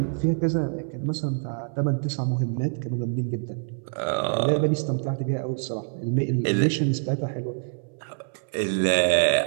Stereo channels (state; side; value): silent; left; 61 dB below the other